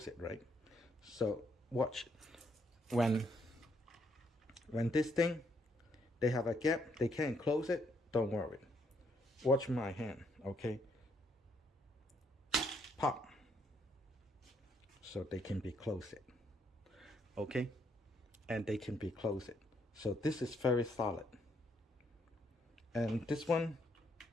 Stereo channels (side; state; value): both; normal; correlation 0.72